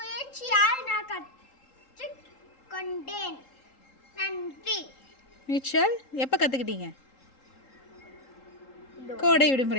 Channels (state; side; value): late; right; 3.8 ms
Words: நான் கற்றுக்கொண்டேன். நன்றி. நீச்சல் எப்போ கற்றுக்கிட்டீங்க? கோடை